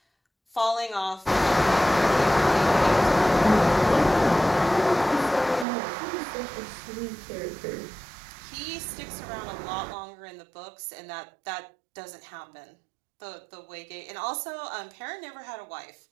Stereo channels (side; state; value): left; drops out; at 5.7 s